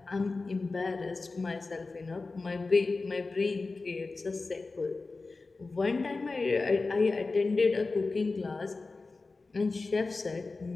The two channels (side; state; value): right; quieter; 3.7 dB